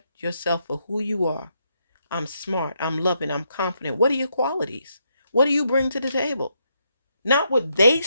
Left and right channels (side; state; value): both; inverted; correlation -0.78